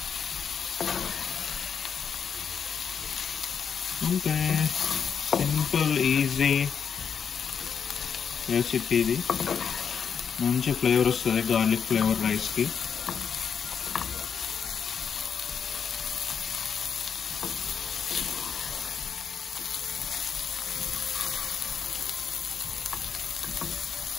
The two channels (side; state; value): right; quieter; 7.0 dB